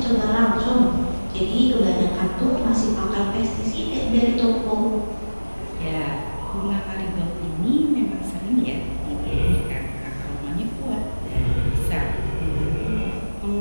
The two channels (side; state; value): both; inverted; correlation -1.00